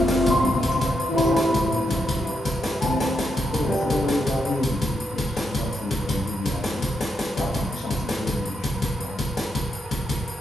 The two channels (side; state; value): both; normal; correlation 0.83